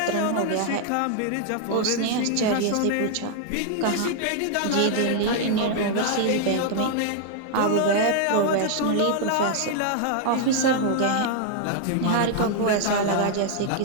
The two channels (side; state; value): both; different; correlation 0.00